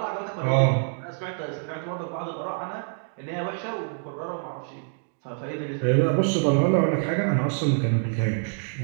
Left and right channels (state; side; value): silent; left; 61 dB below the other